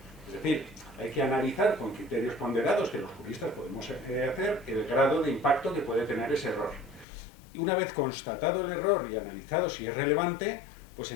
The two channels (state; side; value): drops out; right; at 7.1 s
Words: Es decir, hay que analizar con criterios ponderados que los juristas podemos hacer el grado de impacto que puede tener ese error. Y una vez constatado el error y analizado si es relevante, pues